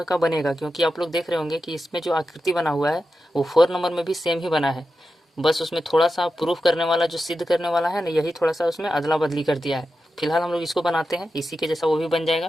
का बनेगा, क्योंकि आप लोग देख रहे होंगे कि इसमें जो आकृति बना हुआ है वो 4 नंबर में भी सेम ही बना है। बस उसमें थोड़ा सा प्रूफ करने वाला जो सिद्ध करने वाला है ना, यही थोड़ा सा उसमें अदला बदली कर दिया है। फिलहाल हम लोग इसको बनाते हैं, इसी के जैसा वो भी बन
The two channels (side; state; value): both; normal; correlation 0.90